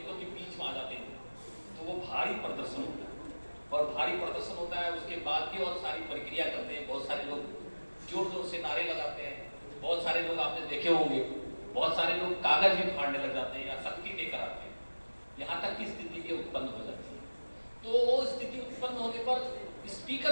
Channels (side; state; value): both; inverted; correlation -1.00